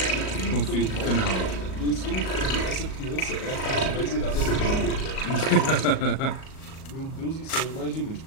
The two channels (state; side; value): late; right; 38 ms